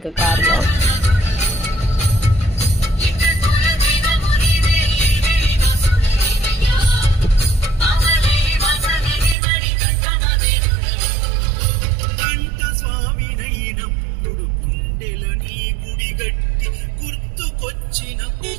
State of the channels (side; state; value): left; drops out; at 9.3 s